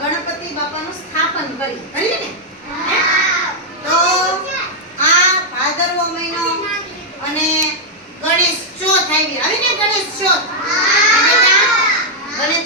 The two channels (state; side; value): normal; both; correlation -0.03